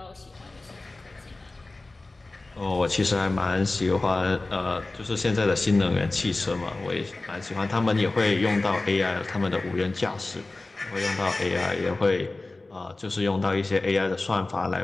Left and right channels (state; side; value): quieter; right; 3.1 dB